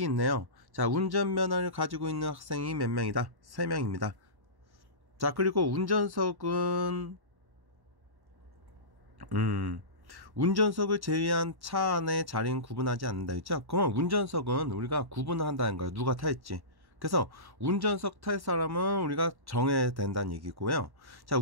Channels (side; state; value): left; late; 1.1 ms